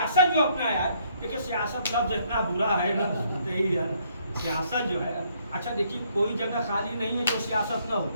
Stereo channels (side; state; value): both; inverted; correlation -0.68